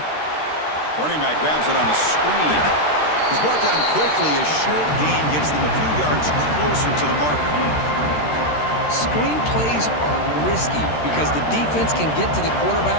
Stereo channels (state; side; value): late; right; 13 ms